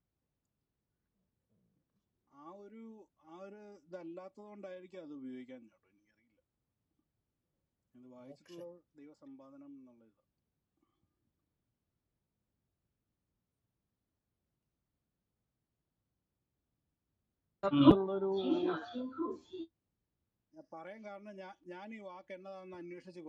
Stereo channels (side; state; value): both; identical; correlation 1.00